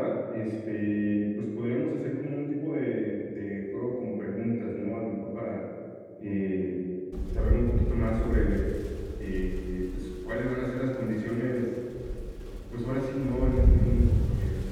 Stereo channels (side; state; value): both; identical; correlation 1.00